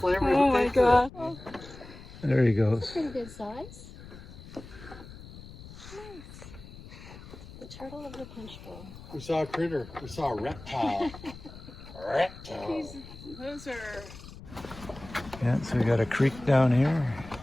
Oh my god. There he goes. Pretty good size. Nice. The turtle of the Punchbowl. We saw a critter. We saw a reptile. Reptile. Those are... Yeah, so we got a creek down here.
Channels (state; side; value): noise; left; rumble, 16 dB below the sound